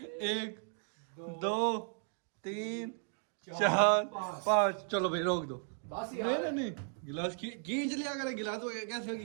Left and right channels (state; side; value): silent; left; 54 dB below the other